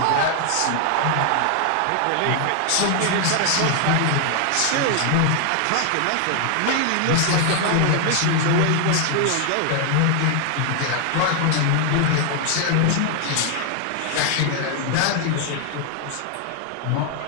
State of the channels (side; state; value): both; different; correlation 0.00